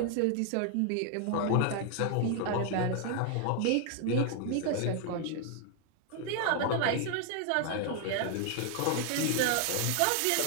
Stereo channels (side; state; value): both; different; correlation 0.00